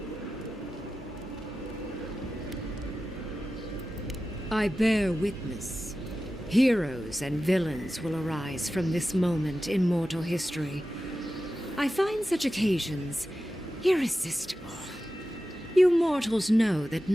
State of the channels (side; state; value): both; normal; correlation 0.93